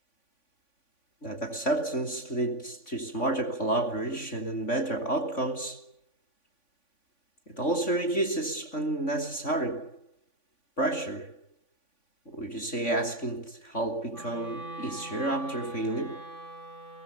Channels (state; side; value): late; right; 3.5 ms